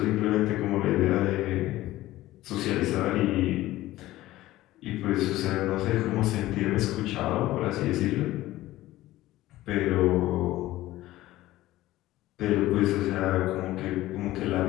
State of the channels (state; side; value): quieter; right; 16.2 dB